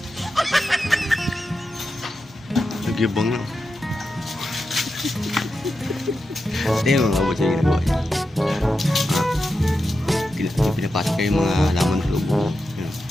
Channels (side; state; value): both; normal; correlation 0.89